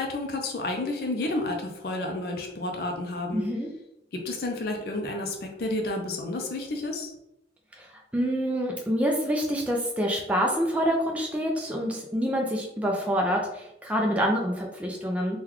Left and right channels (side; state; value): both; normal; correlation 0.56